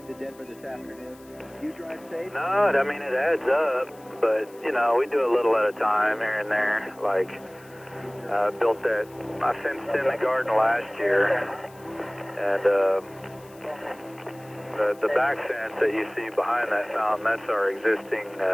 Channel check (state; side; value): noise; left; hiss, 26 dB below the sound